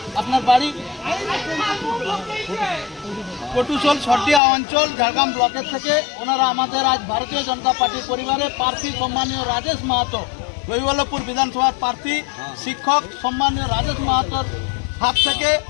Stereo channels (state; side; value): drops out; right; at 4.4 s